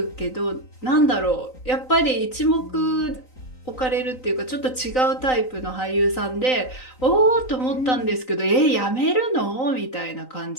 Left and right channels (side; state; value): right; late; 3.9 ms